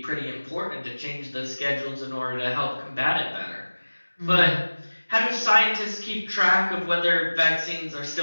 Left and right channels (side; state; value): both; inverted; correlation -1.00